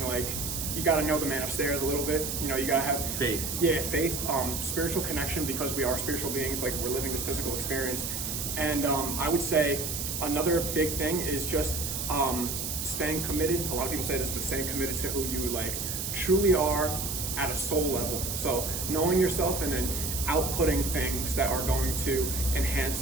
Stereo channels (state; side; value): noise; right; hiss, 3 dB below the sound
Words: like you got to know the man upstairs a little bit. You got to have faith. Yeah, faith, spiritual connection, because we are spiritual beings. Like we're living this physical experience. And I would say another big thing is just staying committed. A lot of people say this, but staying committed to who you like truly are at a soul level. So knowing yourself and then outputting things that are going to